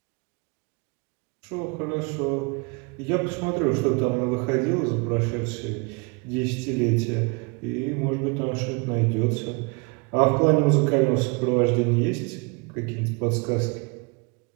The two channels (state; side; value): quieter; left; 30.9 dB